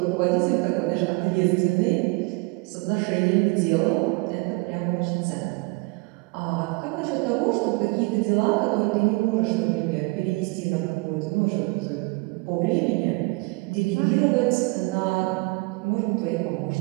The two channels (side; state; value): left; quieter; 27.7 dB